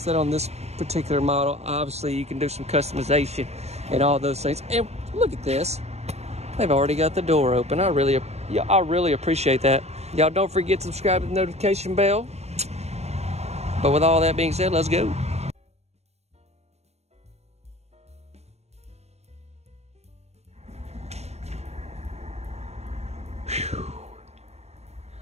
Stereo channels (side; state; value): left; late; 0.31 ms